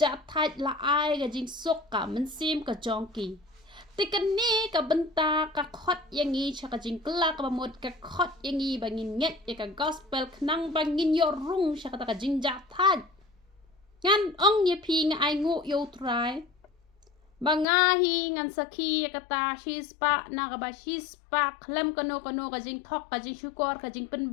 thaj la ai ga jing sok ka men sim ka jongki tikan ni ka benta ka khot yang i chaka jing kla ka bamot ka khot yang i bangin nget ya ka gospel knang bangin yo rung chaka ta ka jing ja thad ngan ong ye pi nga ai ngu yo try banga hi ngan sakhi ya ka ta shispa na ka ba shispa khlem kano ka jing thok ka jing shukor ka jing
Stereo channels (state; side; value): drops out; right; at 17.7 s